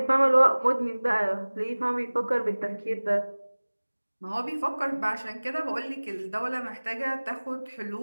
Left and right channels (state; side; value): inverted; both; correlation -1.00